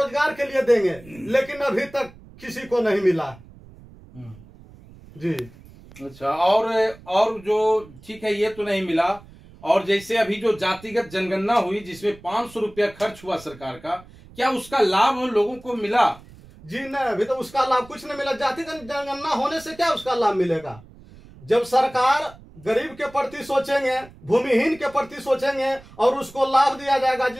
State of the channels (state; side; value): noise; right; rumble, 22 dB below the sound